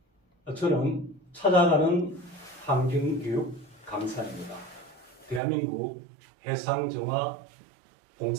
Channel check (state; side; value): drops out; left; at 5.4 s